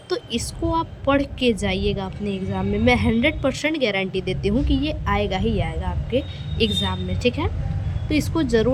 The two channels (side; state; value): both; identical; correlation 1.00